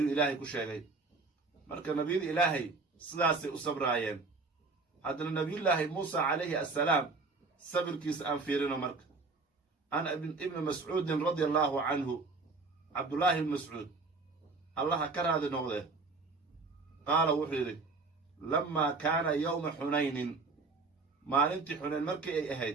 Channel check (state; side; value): quieter; left; 3.9 dB